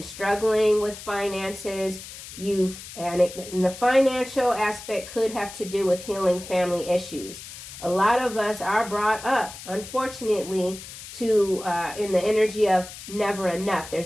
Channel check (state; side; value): noise; left; hiss, 13 dB below the sound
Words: struggling with finances, and the financial aspect could have to do with healing family issues. A lot of us are brought up, unfortunately, to in the energy of never enough.